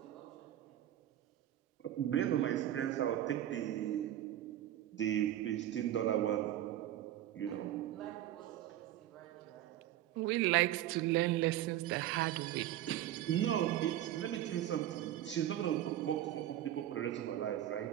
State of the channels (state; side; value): quieter; left; 12.7 dB